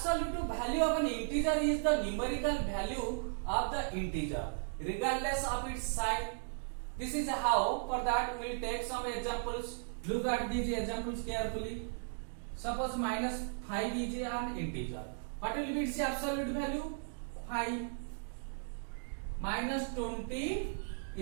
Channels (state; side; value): silent; left; digital silence